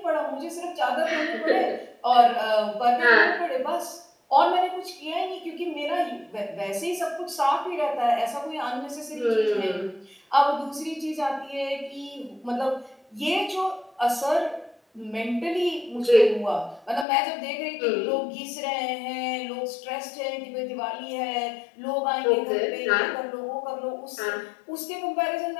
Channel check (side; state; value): right; drops out; at 17.1 s